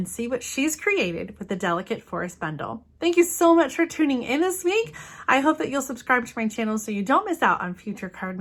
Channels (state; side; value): identical; both; correlation 1.00